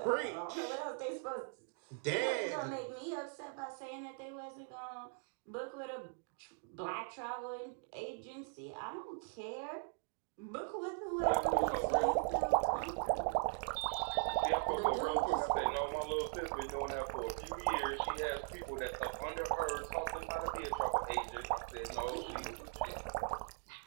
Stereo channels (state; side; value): silent; left; 51 dB below the other